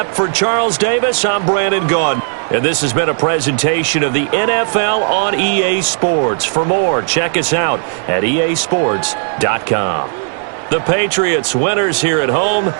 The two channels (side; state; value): left; silent; digital silence